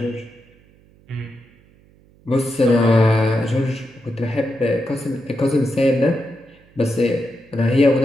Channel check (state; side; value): noise; right; hum, 29 dB below the sound